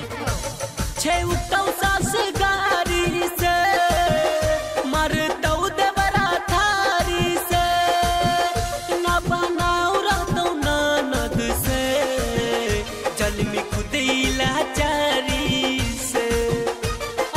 हो। छेउतौ सास गाड़ी से मरतौ देवरा थारी से न बनाऊ रहतौ ननद से जल में खुदैला चारी से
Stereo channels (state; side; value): identical; both; correlation 1.00